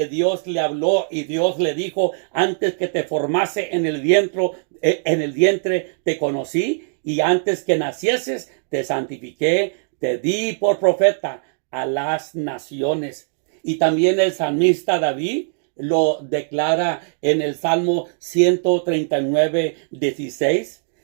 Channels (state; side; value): silent; left; digital silence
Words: Dios le habló y Dios le dijo: antes que te formase en el vientre te conocí, y antes que nacieses te santifiqué, te di por profeta a las naciones. Y también el salmista David lo declara en el Salmo 139:16,